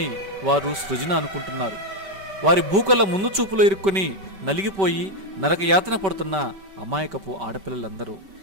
వారు సృజన అనుకుంటున్నారు. వారి భూకల ముందు చూపులో ఇరుక్కుని నలిగిపోయి నరకయాతన పడుతున్న అమాయకపు ఆడపిల్లలందరూ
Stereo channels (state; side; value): late; left; 5.2 ms